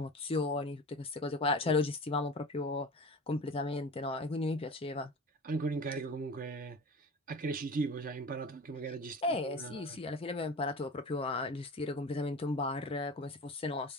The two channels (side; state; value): both; normal; correlation 0.35